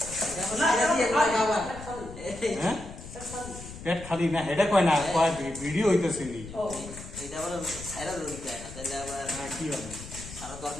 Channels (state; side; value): noise; left; rumble, 13 dB below the sound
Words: না হ্যাঁ পেট খালি না হেডে কয় না কয় ভিডিও হইতেছে নি ও এটা আবার ছাইরা দিতে হয় না তাহলে আবার কি হবে সারা